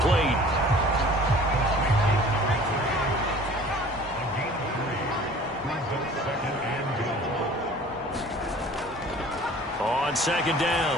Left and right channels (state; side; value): normal; both; correlation 0.47